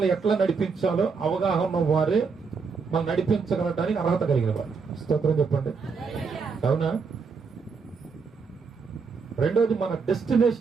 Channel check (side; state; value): left; quieter; 5.2 dB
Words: ఎట్లా నడిపించాలో అవగాహన వారే మనం నడిపించగలటానికి అర్హత కలిగిన వారు. స్తోత్రం చెప్పండి. అవునా? రెండోది, మన